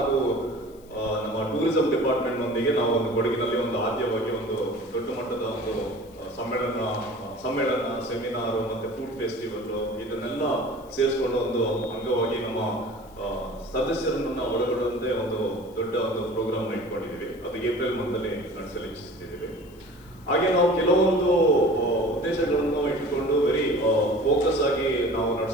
ನಮ್ಮ ಟೂರಿಸಂ ಡಿಪಾರ್ಟ್ಮೆಂಟ್ ನೊಂದಿಗೆ ನಾವು ಒಂದು ಕೊಡಗಿನಲ್ಲಿ ಒಂದು ಆದ್ಯವಾಗಿ ಒಂದು ದೊಡ್ಡ ಮಟ್ಟದ ಒಂದು ಸಮ್ಮೇಳನ, ಸೆಮಿನಾರ್ ಮತ್ತೆ ಫುಡ್ ಫೆಸ್ಟಿವಲ್ ಇದನ್ನೆಲ್ಲ ಸೇರಿಸಿಕೊಂಡು ಒಂದು ಅಂಗವಾಗಿ ನಮ್ಮ ಸದಸ್ಯರನ್ನ ಒಳಗೊಳ್ಳುವಂತೆ ಒಂದು ದೊಡ್ಡ ಒಂದು ಪ್ರೋಗ್ರಾಮ್ ಇಟ್ಕೊಂಡಿದ್ದೀವಿ. ಅದು ಏಪ್ರಿಲ್ ಮಂತಲ್ಲಿ ನಡೆಸಲು ಇಚ್ಛಿಸ್ತಿದ್ದೀವಿ. ಹಾಗೆ ನಾವು ಕೆಲವೊಂದು ಉದ್ದೇಶಗಳನ್ನು ಇಟ್ಕೊಂಡು ವೆರಿ ಫೋಕಸ್ ಆಗಿ ನಾವು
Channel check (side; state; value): left; noise; hiss, 28 dB below the sound